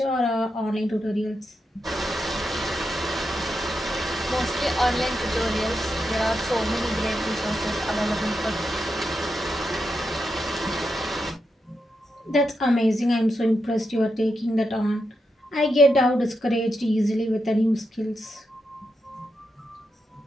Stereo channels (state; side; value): normal; both; correlation 0.85